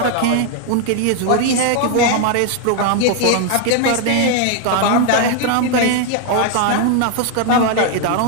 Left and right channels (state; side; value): different; both; correlation 0.00